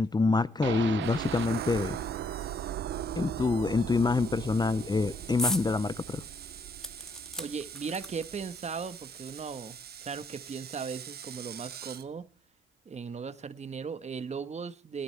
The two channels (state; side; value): normal; both; correlation 0.70